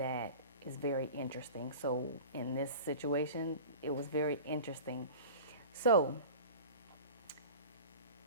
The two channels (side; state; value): both; inverted; correlation -0.36